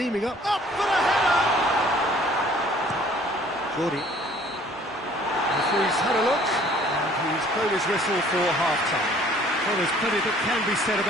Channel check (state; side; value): normal; both; correlation 0.55